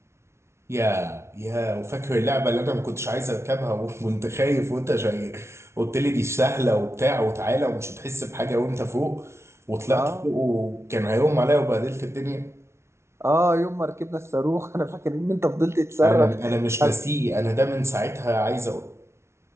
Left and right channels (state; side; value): late; left; 0.13 ms